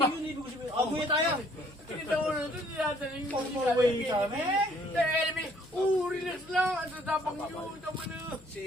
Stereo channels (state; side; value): noise; left; hum, 25 dB below the sound